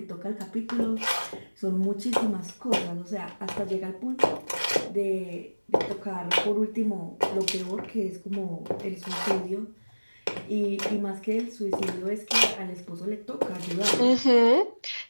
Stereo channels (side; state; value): both; inverted; correlation -1.00